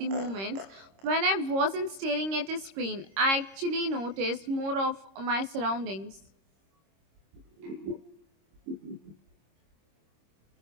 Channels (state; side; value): late; left; 26 ms